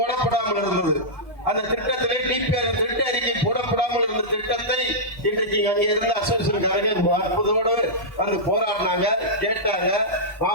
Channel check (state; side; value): normal; both; correlation -0.12